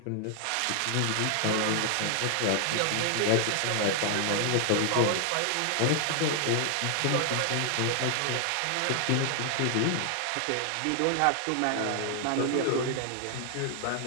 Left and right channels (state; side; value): different; both; correlation 0.00